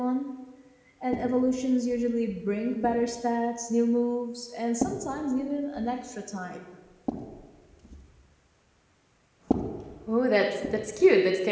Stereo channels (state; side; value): identical; both; correlation 1.00